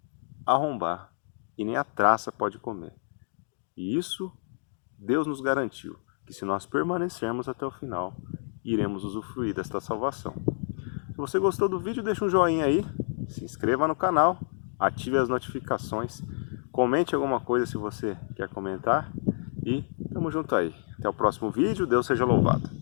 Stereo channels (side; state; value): right; silent; 58 dB below the other